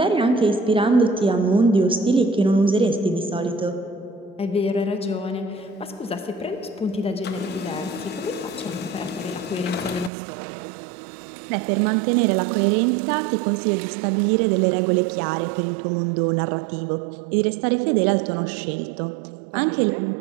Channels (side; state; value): left; drops out; at 10.1 s